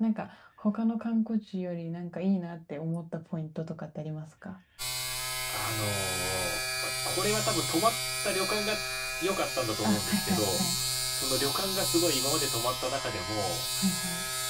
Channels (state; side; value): identical; both; correlation 1.00